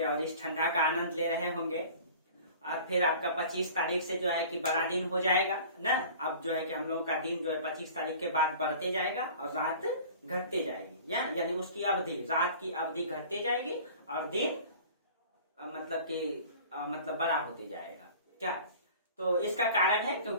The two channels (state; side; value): inverted; both; correlation -0.44